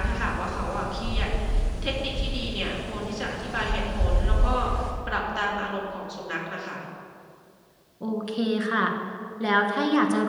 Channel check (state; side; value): identical; both; correlation 1.00